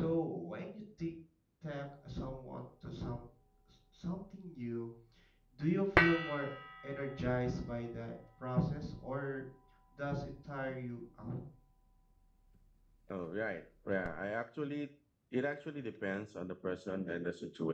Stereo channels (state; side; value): identical; both; correlation 1.00